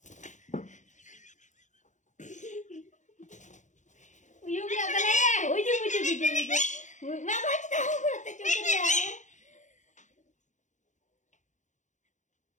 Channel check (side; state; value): right; late; 0.35 ms